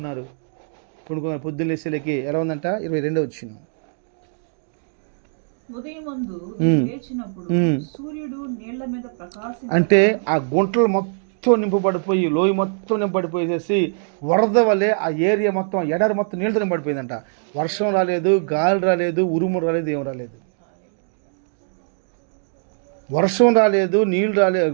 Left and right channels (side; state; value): left; silent; digital silence